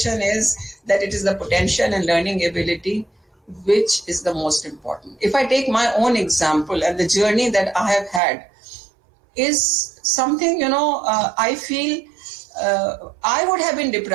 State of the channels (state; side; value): drops out; left; at 8.2 s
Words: is that it is the potential and learning ability which is the most important. If I take my own example and the journey that I have had is something, I feel I would have been